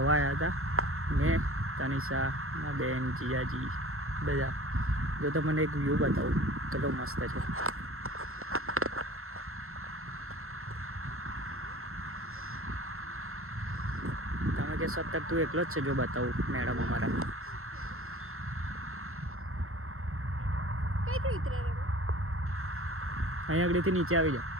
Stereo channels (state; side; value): late; left; 0.62 ms